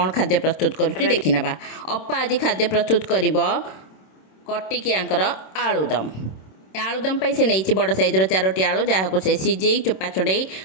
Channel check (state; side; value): late; right; 26 ms